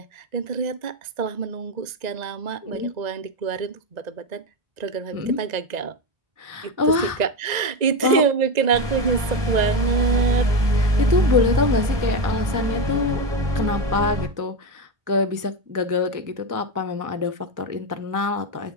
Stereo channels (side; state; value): left; late; 1.9 ms